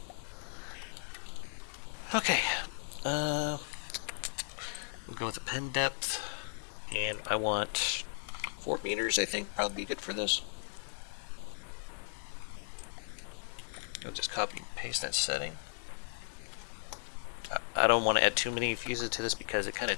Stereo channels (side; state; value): right; silent; 54 dB below the other